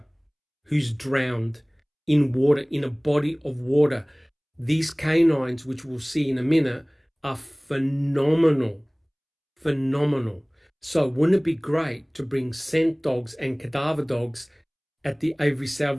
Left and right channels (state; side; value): identical; both; correlation 1.00